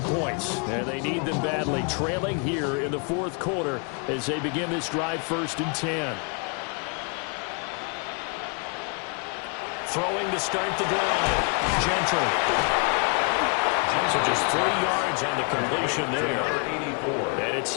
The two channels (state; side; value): quieter; right; 37.6 dB